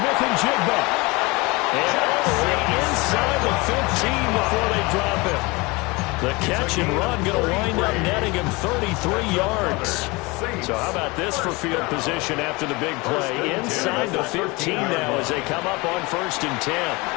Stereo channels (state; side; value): quieter; right; 24.9 dB